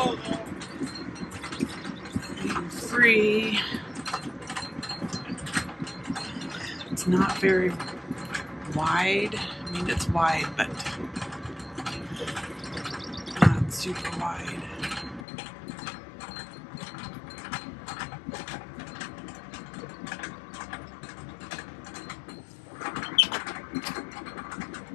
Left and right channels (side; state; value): right; drops out; at 15.2 s